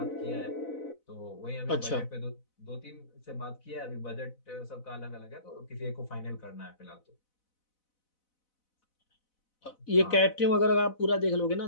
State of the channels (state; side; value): late; right; 4.0 ms